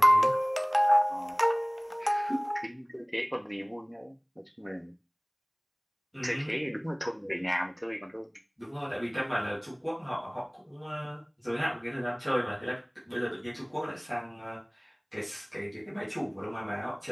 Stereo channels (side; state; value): both; identical; correlation 1.00